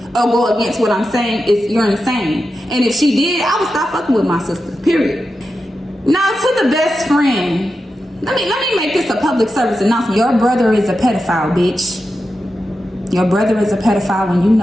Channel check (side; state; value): both; normal; correlation 0.90